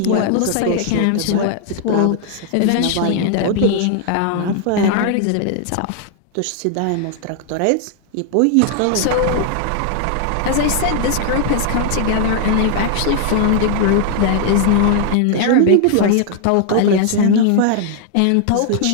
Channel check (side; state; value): both; different; correlation 0.00